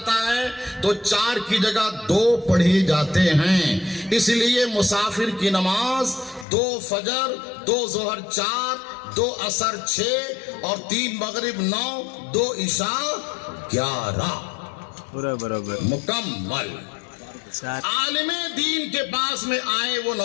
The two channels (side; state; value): right; drops out; at 6.5 s